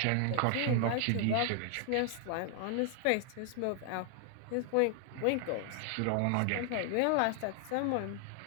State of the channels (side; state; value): both; different; correlation 0.00